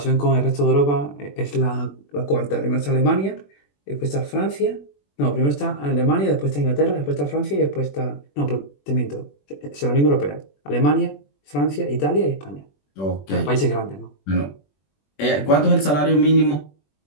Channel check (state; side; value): late; right; 21 ms